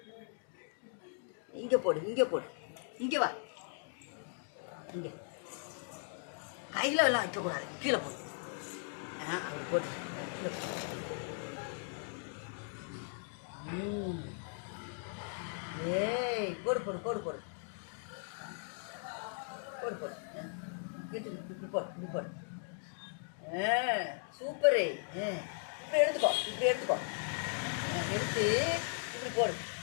இங்கே போடு இங்கே வா. இங்கே கையில் எல்லாம் வைக்கக்கூடாது, கீழே போடு. அப்படி போட்டு ஏய் போடு போடு இப்படி போடு. சூப்பரு. இப்படி எடுத்துக்கோ எடுத்து இப்படி போடு.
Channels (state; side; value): silent; right; 53 dB below the other